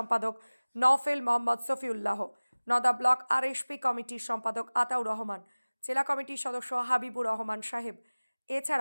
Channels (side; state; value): both; inverted; correlation -1.00